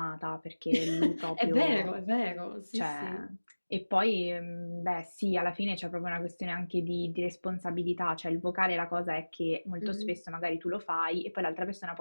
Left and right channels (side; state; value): both; inverted; correlation -1.00